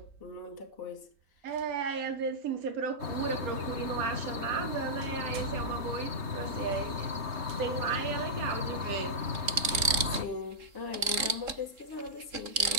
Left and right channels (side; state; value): left; late; 3.7 ms